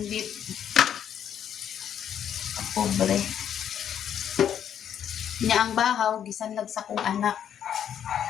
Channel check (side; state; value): right; quieter; 9.3 dB